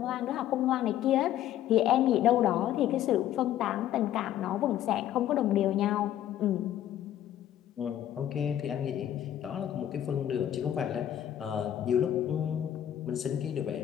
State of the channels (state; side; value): quieter; right; 11.6 dB